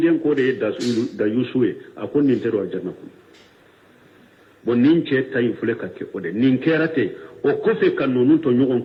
ko da yusuwe a kunnin tero aljanna ku bon nin ce tayin fule ka ke ode nin kerate o kofe kan nonu to nyogon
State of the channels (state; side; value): identical; both; correlation 1.00